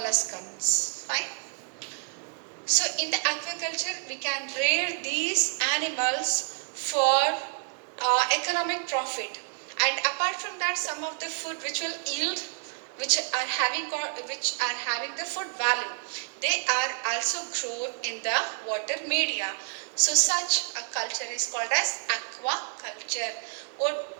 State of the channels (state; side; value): silent; left; digital silence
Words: Fine. So in the aquaculture, we can rear these animals for economic profit. And apart from that, some of the food which will yield, which are having the food value, they are also grown in the water media. So such a culture is called as aquaculture.